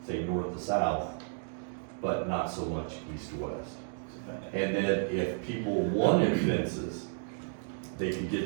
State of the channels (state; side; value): silent; left; digital silence